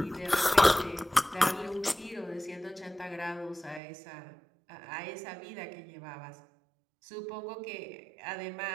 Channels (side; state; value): left; drops out; at 3.8 s